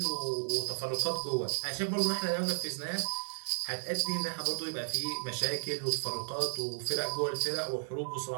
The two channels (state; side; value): silent; left; digital silence